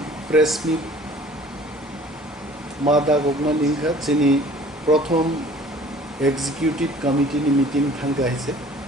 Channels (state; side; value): normal; both; correlation 0.50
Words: प्रेस मिट मादा गगना निंखा जोंनि प्रथम एग्जिकिउटिव कमिटिनि मिटिं थांगाहिसे